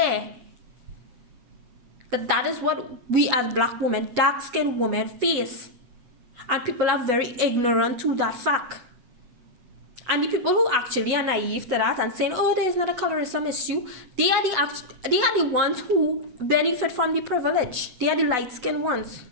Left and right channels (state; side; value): late; left; 8.1 ms